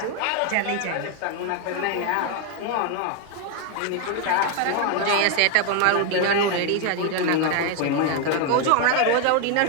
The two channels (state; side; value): different; both; correlation 0.01